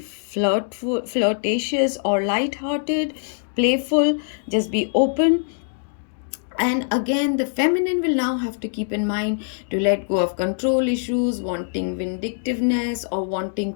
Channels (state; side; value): silent; right; digital silence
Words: or light-hearted, playful, just be open, And again, the feminine will now have to keep in mind to let go of control issues, wanting vindictiveness, or wanting